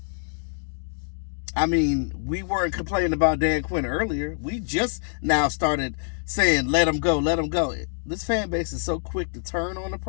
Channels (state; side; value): silent; right; 61 dB below the other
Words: I mean, we weren't complaining about Dan Quinn earlier. We just now started saying, let him go, let him go. This fan base is so quick to turn on a